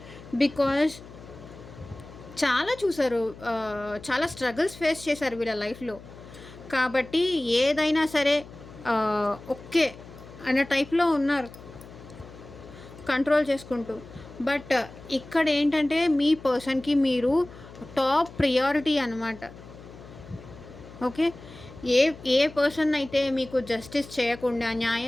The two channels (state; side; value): noise; left; hum, 18 dB below the sound